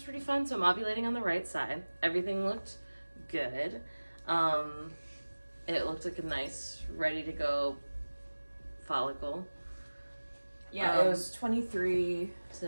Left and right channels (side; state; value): both; inverted; correlation -1.00